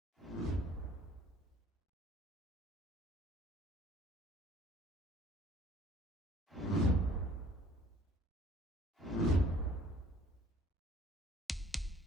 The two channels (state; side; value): normal; both; correlation 0.55